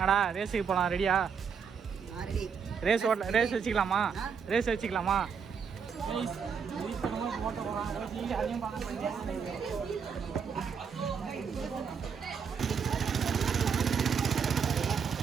ரேஸுக்கு போகலாம், ரெடியா? ரேஸ் வச்சுக்கலாமா? ரேஸ் வச்சுக்கலாமா?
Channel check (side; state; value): left; quieter; 6.5 dB